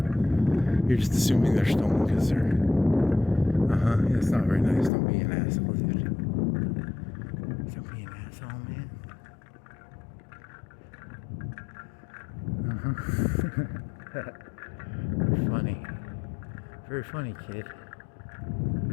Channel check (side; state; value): right; drops out; at 4.9 s